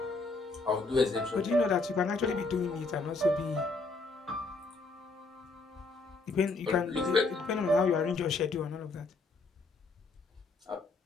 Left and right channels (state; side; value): quieter; right; 3.6 dB